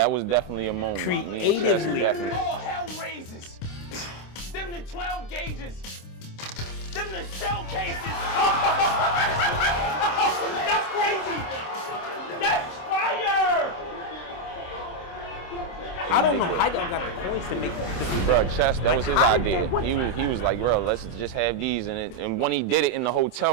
was definitely a moment. Me and Chess Creatively. definitely. All hell raises. Them the 12 gauges. Them the shell cases. That's crazy. That's fire. I don't know how y'all got the points to make that. Bro, Chess, that was his how did idea. that- He was like, bro, let's just have these. And when he did it in the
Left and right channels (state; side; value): late; right; 26 ms